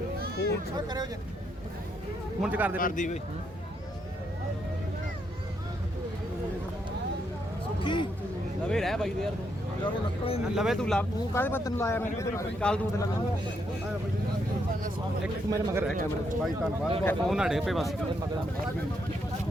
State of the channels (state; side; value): normal; both; correlation 0.77